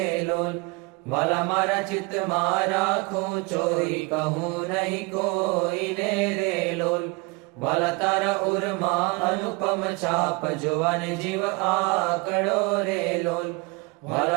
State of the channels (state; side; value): quieter; left; 27.6 dB